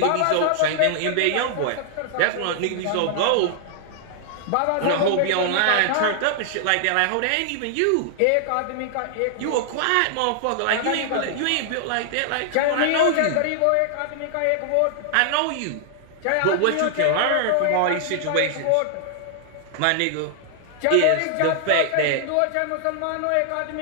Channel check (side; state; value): both; different; correlation -0.01